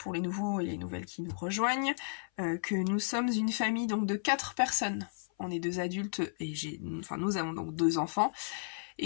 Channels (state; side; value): silent; right; 55 dB below the other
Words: les nouveaux et les nouvelles qui nous rejoignent, que nous sommes une famille donc de 4 personnes. On est 2 adultes et nous avons donc 2 enfants,